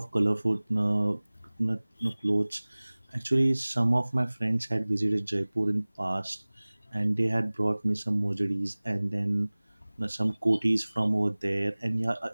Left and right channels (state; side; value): inverted; both; correlation -1.00